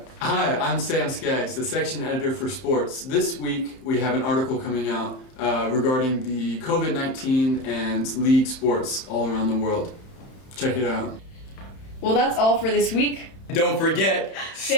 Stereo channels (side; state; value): right; late; 31 ms